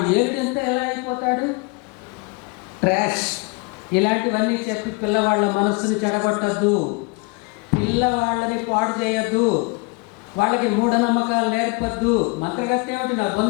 ఏడుంతా ఎలా అయిపోతాడు, ట్రాష్, ఇలాంటివన్నీ చెప్పి పిల్లవాళ్ళ మనస్సుని చెడగొట్టద్దు, పిల్లవాళ్ళని పాడు చేయొద్దు, వాళ్ళకి మూఢనమ్మకాలు నేర్పద్దు. మంత్రగత్యం ఏమిటి నా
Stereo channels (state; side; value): quieter; right; 28.2 dB